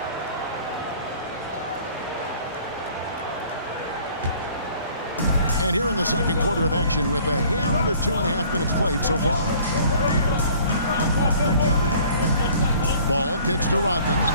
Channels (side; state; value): both; inverted; correlation -0.53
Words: And here in the second quarter of action with a hair under 2.5 minutes played so far. Ball kicks to Rodman.